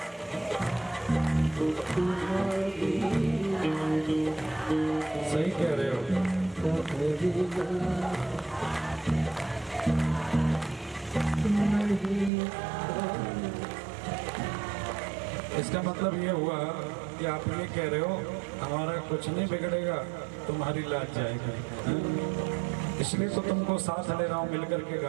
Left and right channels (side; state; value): left; drops out; at 12.3 s